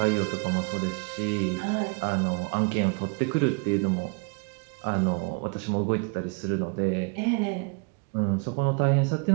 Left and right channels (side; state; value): left; quieter; 32.1 dB